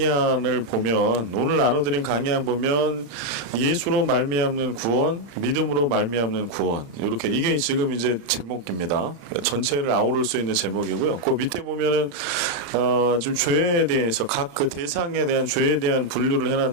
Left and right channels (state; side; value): late; left; 35 ms